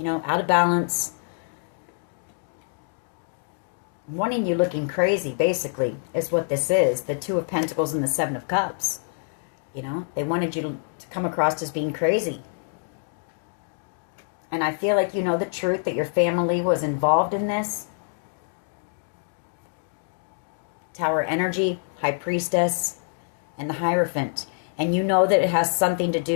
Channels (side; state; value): right; silent; digital silence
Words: know, out of balance. Wanting you looking crazy, basically, is what this is. The Two of Pentacles and the Seven of Cups. You know, they wanted you to come across as being crazy. And I feel like you know the truth that your family was involved in this. Tower energy, High Priestess, and the Hierophant. And you know that it has something to